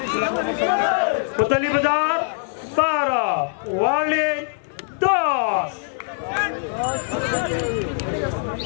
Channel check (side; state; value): right; silent; 64 dB below the other